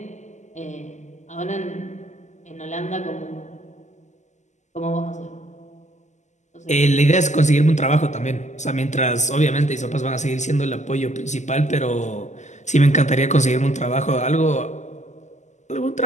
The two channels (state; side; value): late; right; 0.34 ms